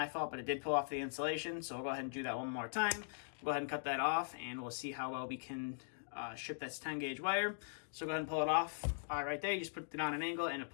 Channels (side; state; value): right; silent; digital silence